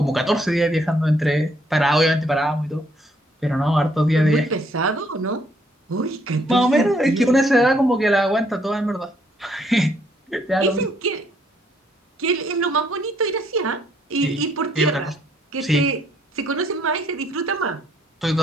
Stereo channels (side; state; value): both; normal; correlation 0.68